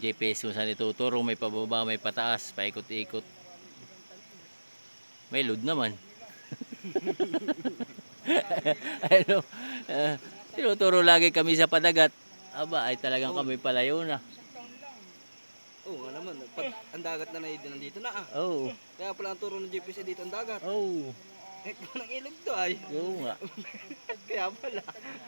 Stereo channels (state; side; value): inverted; both; correlation -1.00